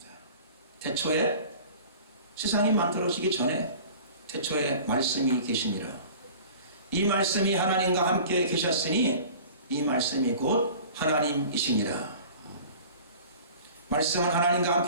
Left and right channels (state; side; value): inverted; both; correlation -0.43